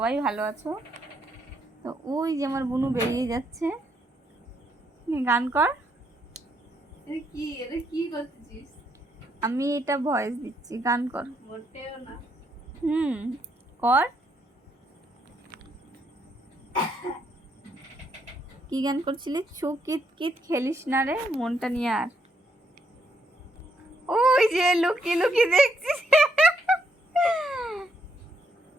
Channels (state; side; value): normal; both; correlation 0.74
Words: ভালো আছো। তো ওই যে আমার বুনু বেরিয়ে যাচ্ছে, গান কর। এটা কি করতেছিস? আমি এটা ভয়েস দিচ্ছি, গান কর। মোটেও না। কর। কি গান করছিলি? ছু কিত কিত খেলিস না রে, মনটা নিয়ে আর। ওই যে লুকিয়ে লুকিয়ে দেখছিস।